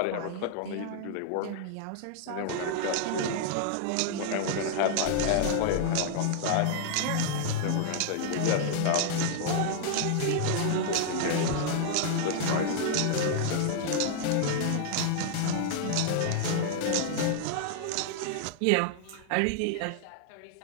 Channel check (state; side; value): different; both; correlation -0.01